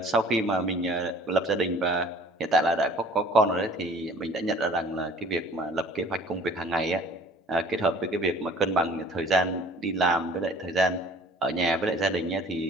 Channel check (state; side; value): normal; both; correlation 0.50